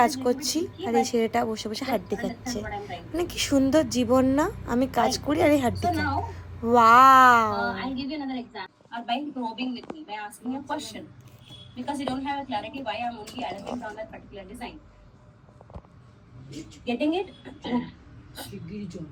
করছি আর এই ছেলেটা বসে বসে হাড্ডি খাচ্ছে। মানে কি সুন্দর জীবন না, আমি কাজ করি আর এই হাড্ডি খাই। Wow. I'll give you another example. Or by probing with me, by asking a question. Because you don't have a clarity why I'm only arrogant on that particular design. Getting it?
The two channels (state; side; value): identical; both; correlation 1.00